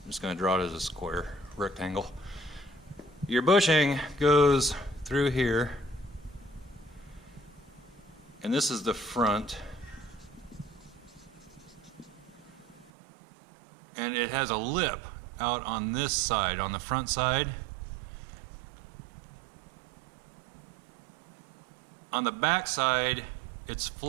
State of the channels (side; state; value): left; drops out; at 12.9 s